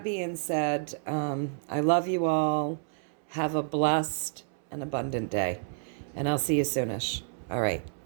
being said, I love you all. Have a blessed and abundant day. And I'll see you soonish. All right.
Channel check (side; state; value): left; silent; 58 dB below the other